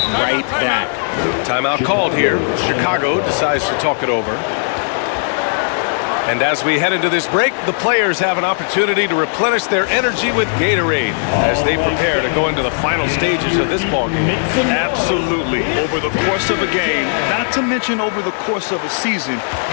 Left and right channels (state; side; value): silent; right; digital silence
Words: right back. Timeout called here. Chicago decides to talk it over. And as we head into this break, the players have an opportunity to replenish their energy with Gatorade as they prepare to go into the final stages of this ball game. Absolutely. Over the course of a game, not to mention over the course of a season,